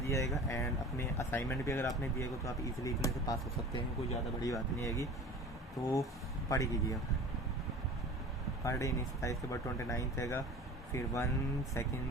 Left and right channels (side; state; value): both; normal; correlation 0.39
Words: है, एंड अपने असाइनमेंट भी अगर आपने दिएगा तो आप इजीली इतने से पास हो सकते हैं, कोई ज़्यादा बड़ी बात नहीं आएगी। तो पढ़ कीजिए, पर डे नहीं था, इसके बाद 29 रहेगा, फिर 1, 2,